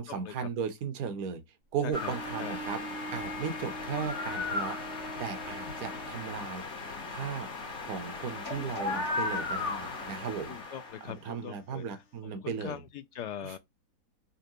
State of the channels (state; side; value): late; left; 3.5 ms